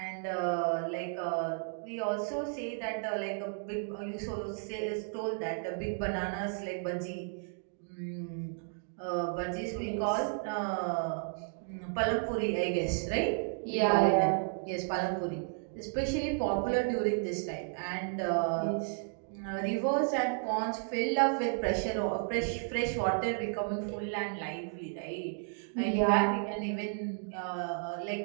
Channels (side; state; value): left; silent; 56 dB below the other